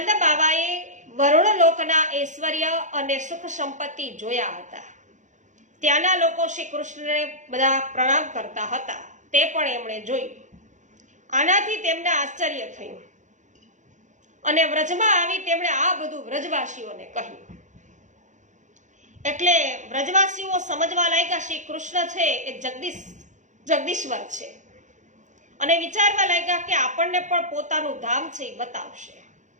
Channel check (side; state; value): left; late; 0.35 ms